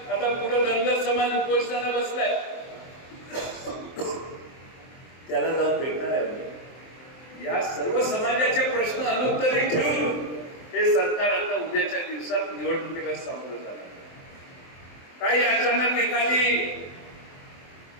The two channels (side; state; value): right; late; 23 ms